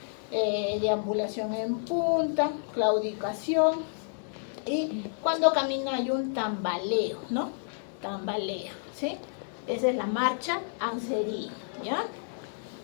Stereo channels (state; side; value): silent; right; 58 dB below the other